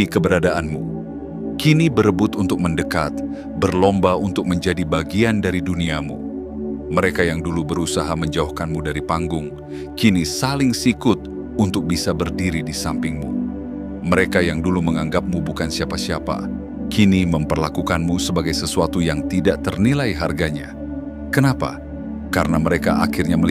keberadaanmu, kini berebut untuk mendekat, berlomba untuk menjadi bagian dari duniamu. Mereka yang dulu berusaha menjauhkanmu dari panggung, kini saling sikut untuk bisa berdiri di sampingmu. Mereka yang dulu menganggapmu bukan siapa-siapa, kini memperlakukanmu sebagai sesuatu yang tidak ternilai harganya. Kenapa? Karena mereka akhirnya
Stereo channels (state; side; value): identical; both; correlation 1.00